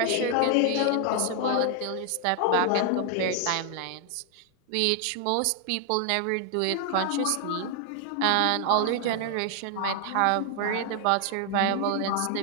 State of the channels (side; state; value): both; different; correlation 0.00